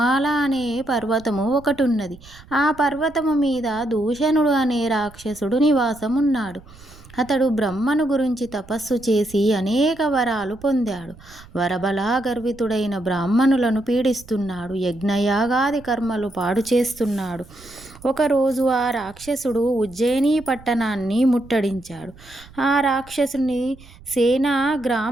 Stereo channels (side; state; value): right; noise; rumble, 22 dB below the sound